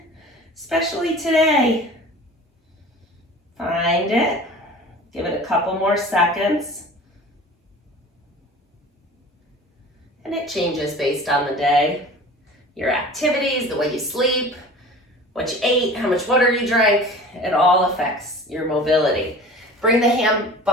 especially today. Find it, give it a couple more seconds. And it changes based on the day, your activities, the way you sleep, what you ate, how much water you drank. It all affects your mobility. Bring the hand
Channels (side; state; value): both; normal; correlation 0.41